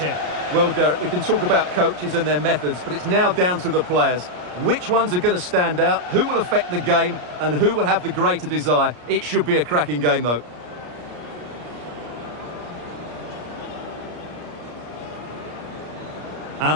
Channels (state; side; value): late; left; 34 ms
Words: Well, Derek, we can talk about coaches and their methods, but it's now down to the players. Which ones are going to stand out, who will affect the game, and who will have the greater desire? It should be a cracking game, though.